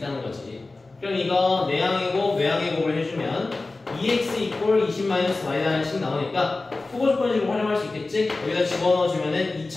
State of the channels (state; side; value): quieter; right; 3.4 dB